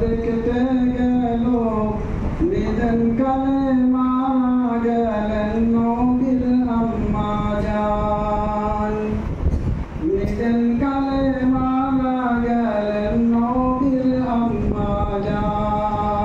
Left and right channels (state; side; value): identical; both; correlation 1.00